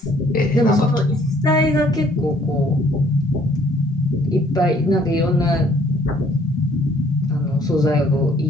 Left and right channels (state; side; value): normal; both; correlation 0.61